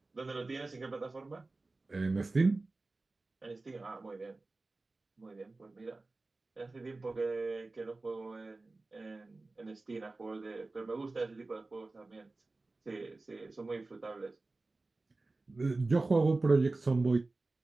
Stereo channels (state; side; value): quieter; left; 3.3 dB